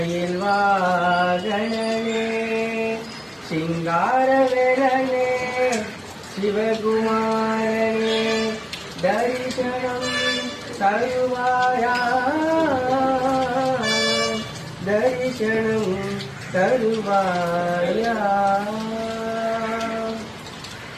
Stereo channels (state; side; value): identical; both; correlation 1.00